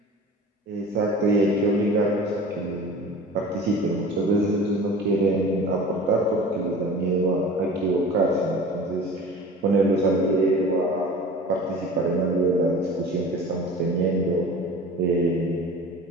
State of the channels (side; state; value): both; normal; correlation 0.40